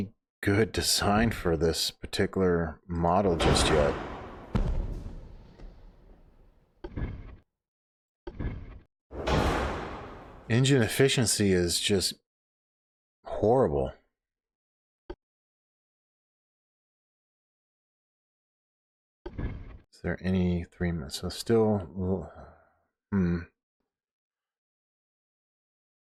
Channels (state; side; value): identical; both; correlation 1.00